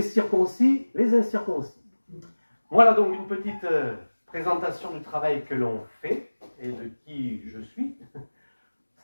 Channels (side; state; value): both; inverted; correlation -1.00